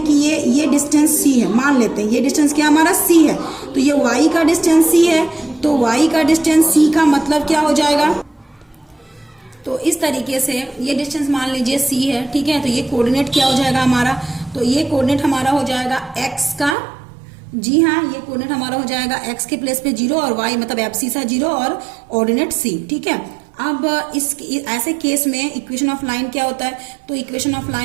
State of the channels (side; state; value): left; drops out; at 16.8 s